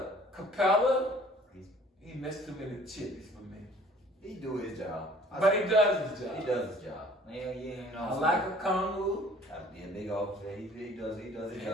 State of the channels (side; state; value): both; normal; correlation 0.53